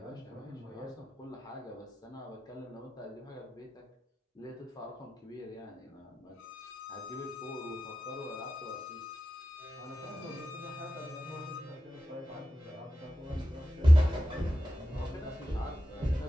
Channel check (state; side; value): normal; both; correlation 0.92